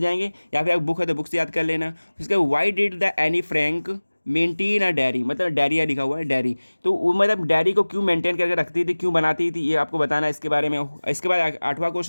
या फिर आप बुक है तो बुक से याद कर लेना। उसके why did the Anne Frank maintain a diary, मतलब डायरिया लिखा हुआ है डायरी, तो वो मतलब डायरी को क्यों मेंटेन करके रखती थी, क्यों बनाती थी, ये आपको बताना है इसके बारे में। इसके बाद 8वां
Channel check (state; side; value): inverted; both; correlation -1.00